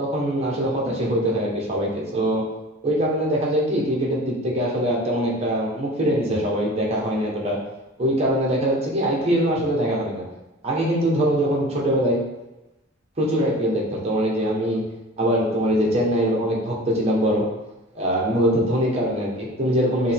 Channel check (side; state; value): both; normal; correlation 0.40